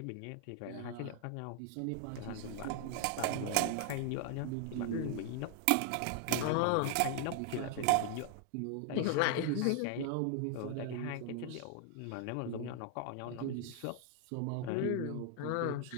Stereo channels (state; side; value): different; both; correlation 0.00